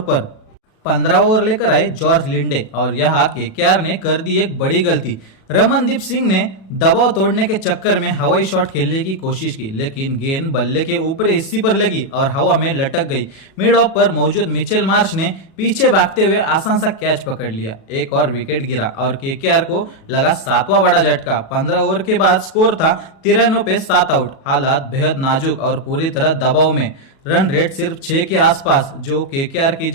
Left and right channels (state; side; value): late; right; 37 ms